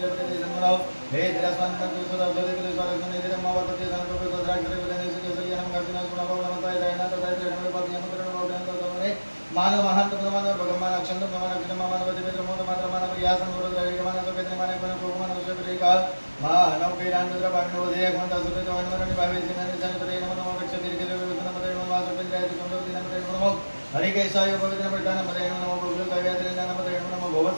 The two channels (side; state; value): both; inverted; correlation -1.00